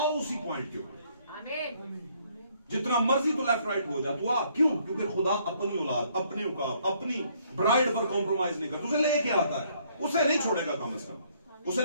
उसी पॉइंट के ऊपर। जितना मर्जी तो लेफ्ट राइट हो जा, तो आप क्यों? क्योंकि खुदा अपनी औलाद, अपने औकात, अपनी ब्राइड पर कॉम्प्रोमाइज नहीं करता। उसे लेके आता है, उसे नहीं छोड़ेगा कम से कम,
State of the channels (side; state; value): both; inverted; correlation -0.66